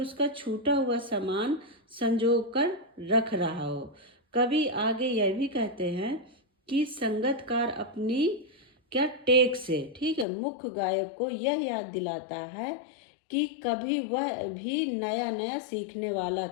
छूटा हुआ सामान संजो कर रख रहा हो। कभी आगे यह भी कहते हैं कि संगतकार अपनी क्या टेक से, ठीक है, मुख्य गायक को यह याद दिलाता है कि कभी वह भी नया नया सीखने वाला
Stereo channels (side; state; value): right; drops out; at 10.2 s